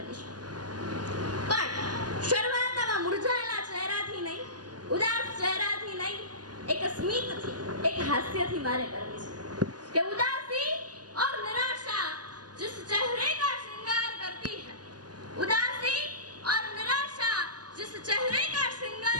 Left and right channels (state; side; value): late; left; 0.69 ms